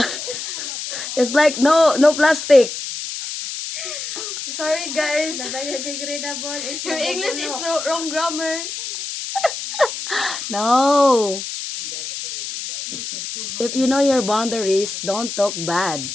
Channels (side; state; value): left; noise; hiss, 7 dB below the sound